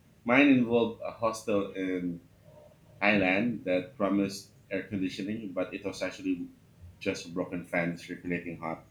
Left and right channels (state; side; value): identical; both; correlation 1.00